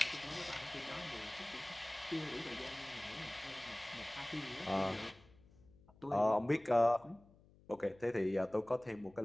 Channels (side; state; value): left; noise; hum, 26 dB below the sound